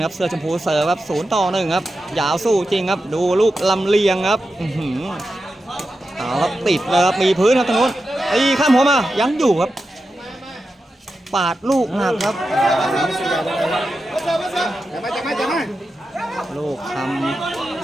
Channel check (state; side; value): normal; both; correlation 0.90